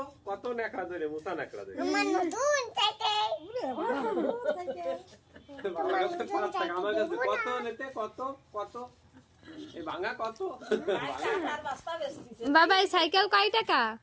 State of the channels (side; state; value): both; identical; correlation 1.00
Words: কত নেকড়া ধরে মুসা নেকড়া ধরে আমার নতুন সাইকেল বাবার কাছে 5 টাকা আমার কাছে কত নিতে কত কত এই ভাঙা কত আর বাস্তা বেচতিছে। বাবা এই সাইকেল কয় টাকা?